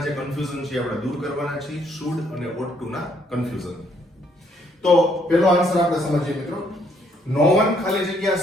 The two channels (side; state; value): both; normal; correlation 0.69